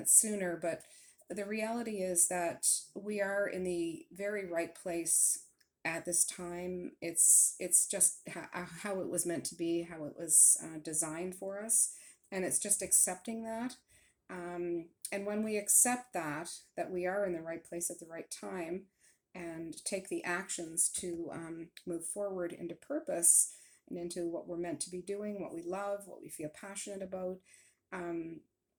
sooner? But the reality is that we are in the very right place at this time. It's just how it was meant to be, how it was designed for us, and it's just accepting that. And when we accept that we are in the right place at the right time, and take the actions to move forward into purpose and into what we're meant to be doing, what we love, what we feel passionate about, um,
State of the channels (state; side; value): identical; both; correlation 1.00